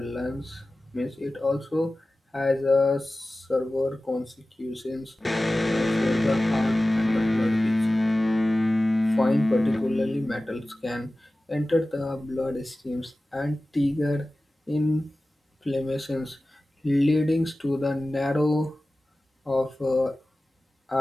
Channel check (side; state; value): both; normal; correlation 0.96